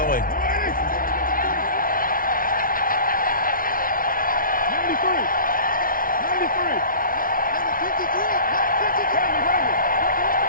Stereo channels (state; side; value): late; right; 0.41 ms